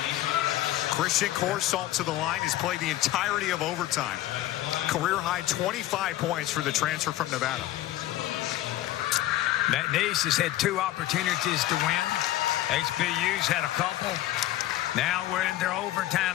Christian Corsalt to the line has played the entirety of overtime. Career high 25 points for the transfer from Nevada. McNeese has had 2 opportunities to win. HBU's had a couple. Now we're in their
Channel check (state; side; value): quieter; right; 14.8 dB